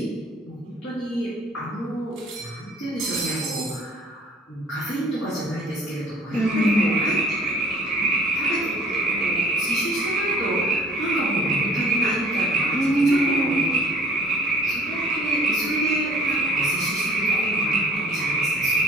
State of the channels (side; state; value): both; normal; correlation 0.51